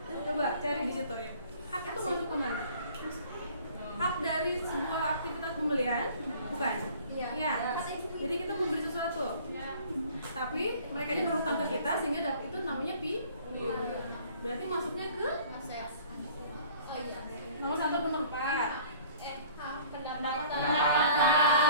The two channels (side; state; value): both; inverted; correlation -0.51